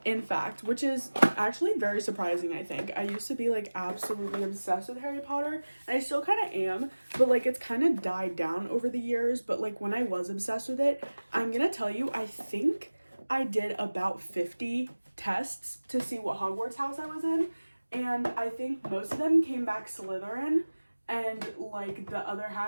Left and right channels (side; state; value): both; inverted; correlation -1.00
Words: in fact, which is actually very surprising, I think. I used to be like absolutely obsessed with Harry Potter, and I still kind of am, but like it's kind of died down over the years. But like when I was obsessed with it, I'm gonna tell you, I think I did about 50 tests to see what Hogwarts house I was in, and I think most of them came back Slytherin, and like the other